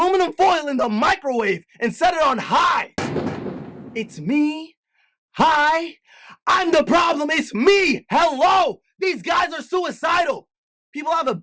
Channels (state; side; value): identical; both; correlation 1.00